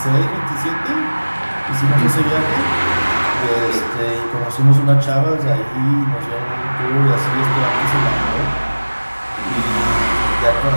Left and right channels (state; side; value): inverted; both; correlation -1.00